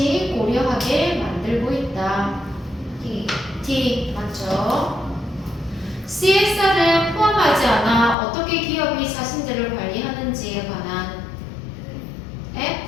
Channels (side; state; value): right; drops out; at 8.2 s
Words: 고려하게 만들고 있다. D 맞죠? CSR을 포함하지 않아 어떻게 기업이 자신들을 관리하는지에 관한